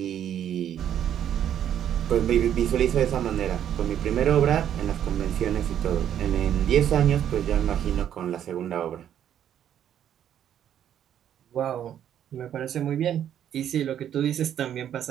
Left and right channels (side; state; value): left; quieter; 10.1 dB